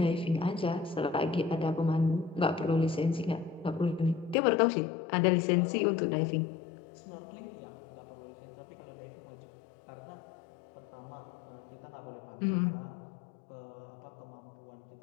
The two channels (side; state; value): right; drops out; at 4.4 s